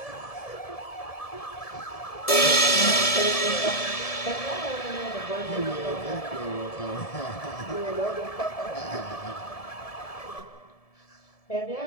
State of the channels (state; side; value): late; right; 1.7 ms